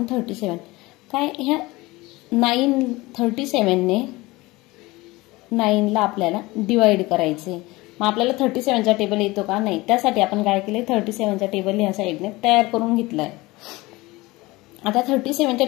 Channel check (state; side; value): quieter; right; 21.2 dB